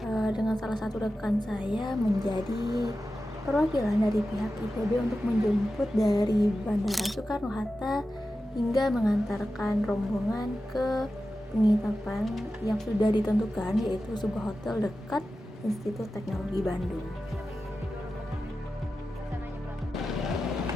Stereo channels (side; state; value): both; normal; correlation 0.93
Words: dengan salah satu rekan saya menjadi perwakilan dari pihak ITB untuk menjemput dari Bandara Soekarno-Hatta hingga mengantarkan rombongan ke penginapan yang sudah ditentukan, yaitu sebuah hotel dekat Institut Teknologi Bandung.